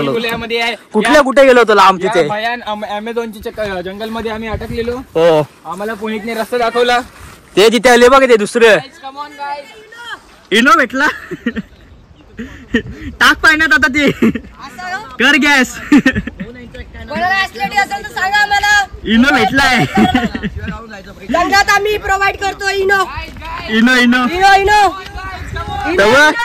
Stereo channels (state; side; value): identical; both; correlation 1.00